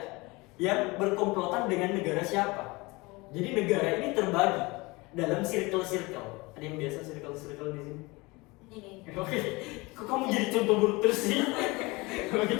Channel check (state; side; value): quieter; right; 24.1 dB